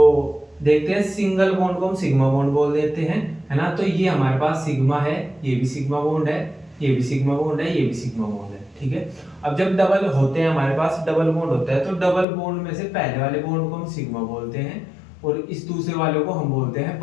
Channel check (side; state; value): right; drops out; at 12.2 s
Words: देखते हैं, सिंगल बॉन्ड को हम सिग्मा बॉन्ड बोल देते हैं, है ना। तो ये हमारे पास सिग्मा है, ये भी सिग्मा बॉन्ड है, ये भी सिग्मा बॉन्ड है, ये भी सिग्मा बॉन्ड है। ठीक है, अब जब डबल होते हैं हमारे पास, डबल बॉन्ड होता है, तो डबल बॉन्ड में से पहले वाले बॉन्ड को हम सिग्मा बोलते हैं और इस दूसरे वाले को हम बोलते हैं